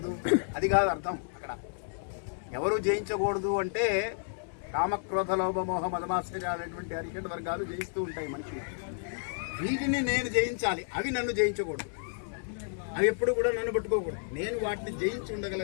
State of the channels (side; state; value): right; silent; 57 dB below the other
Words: అది కాదు అర్థం. అక్కడ ఎవరు జయించకూడదు అంటే కామక్రోధ లోభ మోహ మదమాశ్చర్యాలనేటువంటి అరిషడ్ వర్గాలు జయిస్తూ ఉంటాయి మనిషిని. వీటిని నేను జయించాలి, అవి నన్ను జయించకూడదు. అవి ఎప్పుడు కూడా నన్ను పట్టుకోకూడదు. నేను వాటిని జయించి